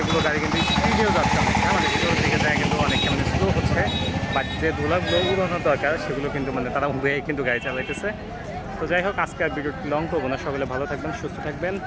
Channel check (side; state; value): both; identical; correlation 1.00